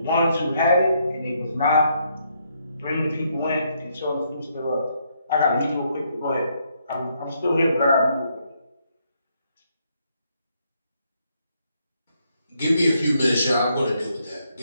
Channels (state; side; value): inverted; both; correlation -0.74